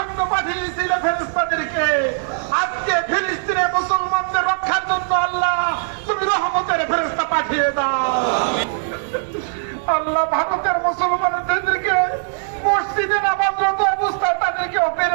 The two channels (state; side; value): silent; left; digital silence